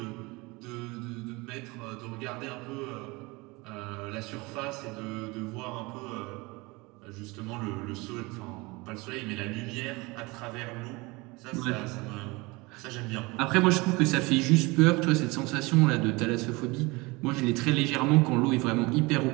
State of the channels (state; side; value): quieter; left; 24.4 dB